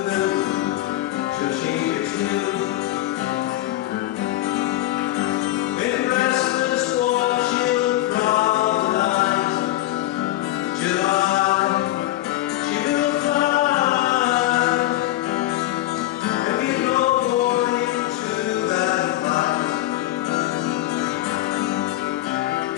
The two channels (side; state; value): right; quieter; 15.4 dB